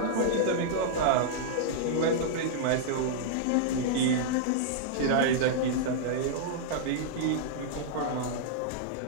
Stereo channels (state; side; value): different; both; correlation -0.01